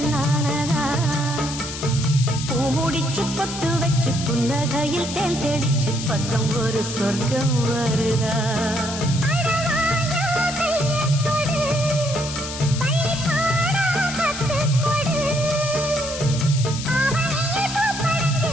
பூமுடிச்சு பொத்து வச்சு புன்னகையில் தேன் தெளிச்சு பக்கம் ஒரு சொர்க்கம் வருதா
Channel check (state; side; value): noise; left; hiss, 8 dB below the sound